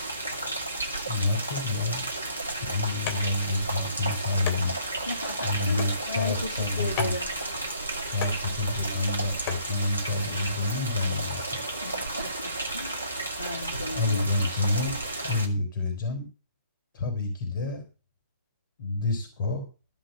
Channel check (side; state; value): both; inverted; correlation -0.61